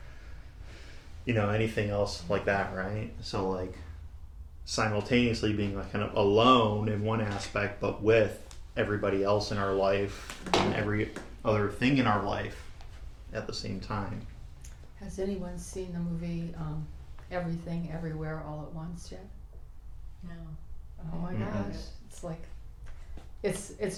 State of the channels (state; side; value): identical; both; correlation 1.00